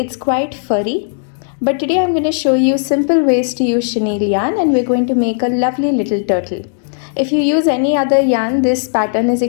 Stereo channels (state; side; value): silent; right; digital silence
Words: quite furry. But today I'm going to show you simple ways to use Chenille yarn and we're going to make a lovely little turtle. If you use any other yarn, this pattern is